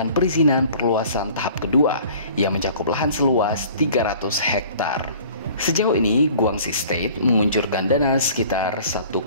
perizinan perluasan tahap kedua yang mencakup lahan seluas 300 hektar. Sejauh ini, Guangxi State menguncurkan dana sekitar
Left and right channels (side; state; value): both; inverted; correlation -0.49